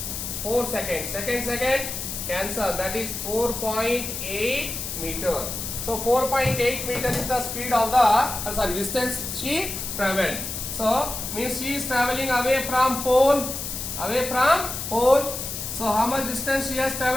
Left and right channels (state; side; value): noise; left; hiss, 5 dB below the sound